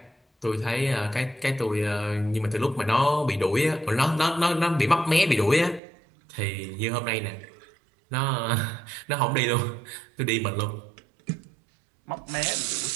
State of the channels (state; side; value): drops out; left; at 5.8 s